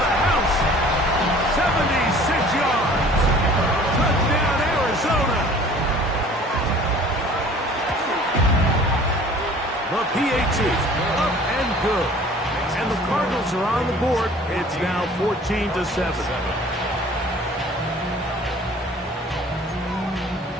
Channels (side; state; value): both; normal; correlation 0.49